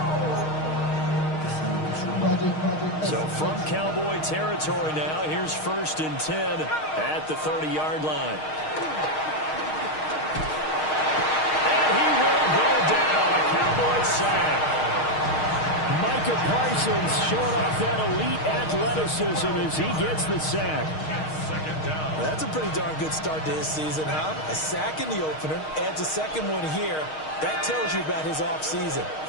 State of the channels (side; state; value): right; late; 6.4 ms